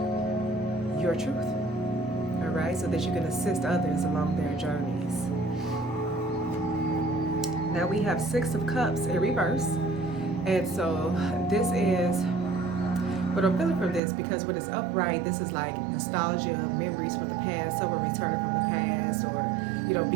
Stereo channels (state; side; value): drops out; left; at 14.0 s